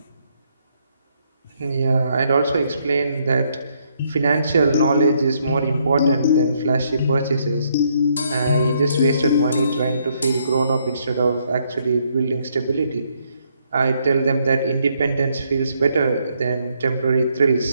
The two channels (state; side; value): inverted; both; correlation -0.72